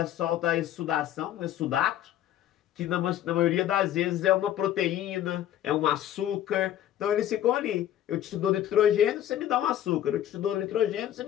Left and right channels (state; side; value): quieter; right; 11.8 dB